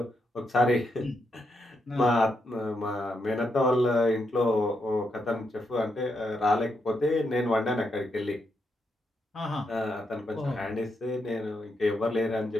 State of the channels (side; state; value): both; normal; correlation 0.81